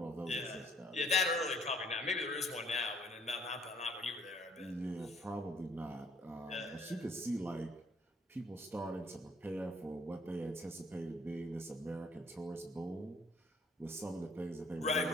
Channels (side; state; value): both; normal; correlation 0.60